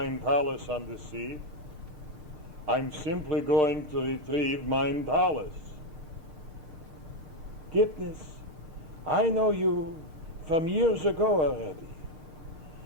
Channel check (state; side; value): late; left; 6.6 ms